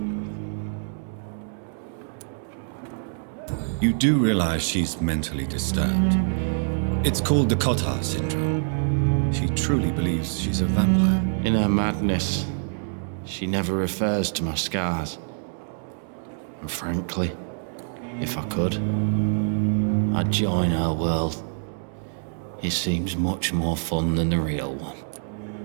You do realize she's mentally disturbed. It's called the Cotard syndrome. She truly believes she's a vampire. In her madness, she never refers to my scars. And frankly, if I could, I'd join her world. It seems much more fun than the real one.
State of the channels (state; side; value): silent; left; 61 dB below the other